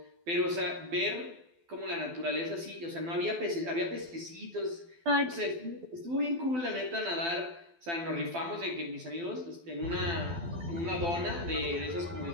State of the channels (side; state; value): left; late; 12 ms